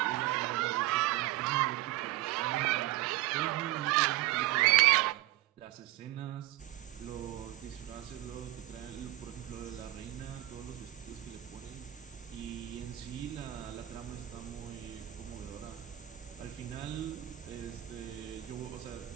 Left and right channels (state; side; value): quieter; left; 16.3 dB